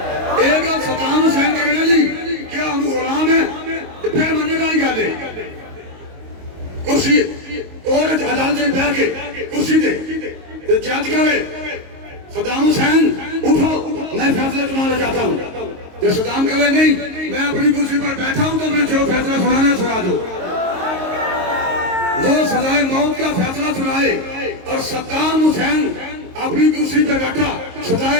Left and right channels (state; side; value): late; left; 22 ms